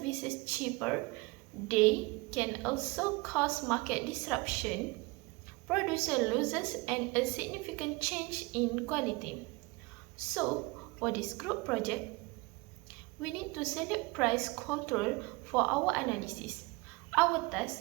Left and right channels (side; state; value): left; quieter; 24.6 dB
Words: cheaper, they can also cause market disruption, producer losses, and a significant change in quality. So, for this group project, we need to select price control for our analysis. Our